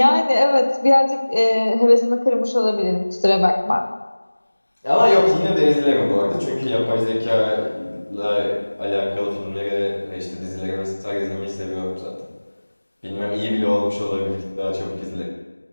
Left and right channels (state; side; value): inverted; both; correlation -1.00